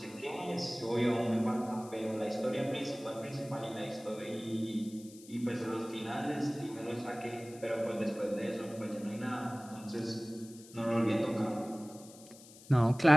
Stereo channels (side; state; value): left; noise; hiss, 20 dB below the sound